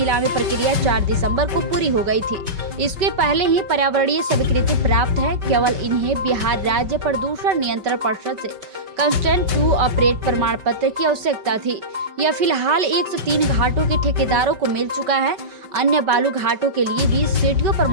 प्रक्रिया 4 दिसंबर को पूरी हो गई थी। इसके पहले ही पर्यावरणीय स्वीकृति प्राप्त है। केवल इन्हें बिहार राज्य प्रदूषण नियंत्रण परिषद से कंस्टेंट टू ऑपरेट प्रमाण पत्र की आवश्यकता थी। यह फिलहाल 103 घाटों के ठेकेदारों को मिल चुका है। अन्य बालू घाटों के लिए भी सीटीओ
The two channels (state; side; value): late; left; 5.2 ms